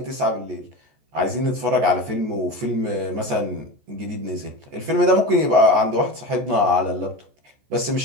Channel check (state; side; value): late; left; 14 ms